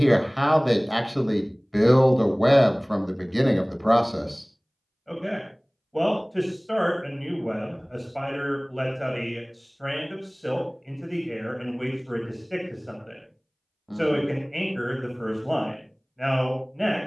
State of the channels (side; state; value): both; identical; correlation 1.00